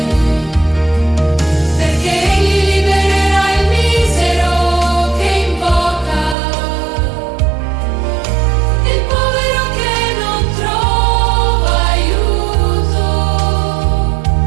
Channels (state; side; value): drops out; left; at 6.4 s